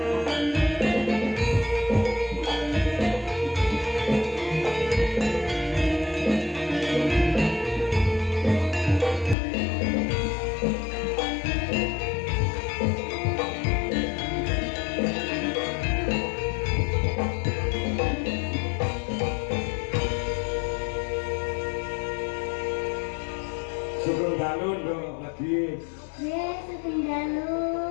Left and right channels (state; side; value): drops out; right; at 9.3 s